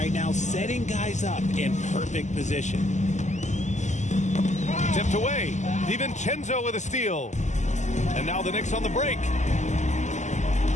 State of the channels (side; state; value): right; late; 0.34 ms